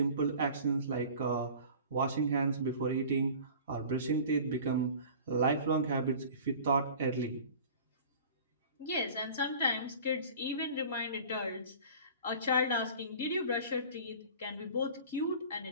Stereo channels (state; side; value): inverted; both; correlation -0.42